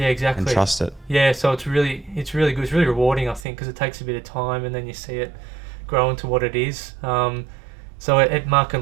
and trust it. Yeah, so it's really good. It's really rewarding, I think, because it takes a bit of time, and then you see it grow into what it is. So at Mark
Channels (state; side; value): drops out; left; at 3.5 s